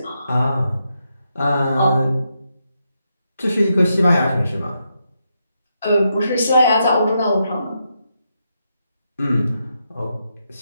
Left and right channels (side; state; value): both; inverted; correlation -0.83